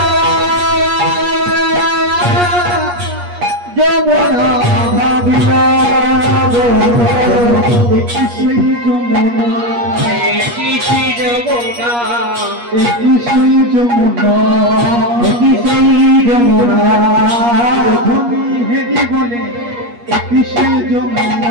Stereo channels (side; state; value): left; late; 8.4 ms